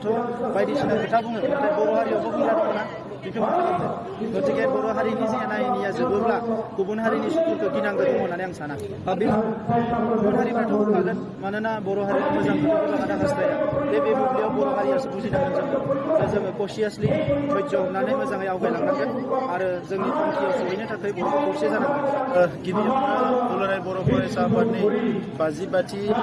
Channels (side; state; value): both; identical; correlation 1.00